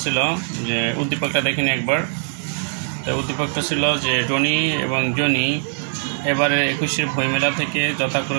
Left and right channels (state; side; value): silent; left; digital silence